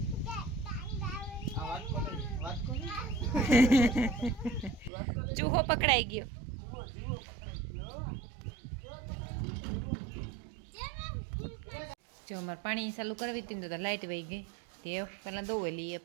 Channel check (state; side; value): drops out; left; at 4.9 s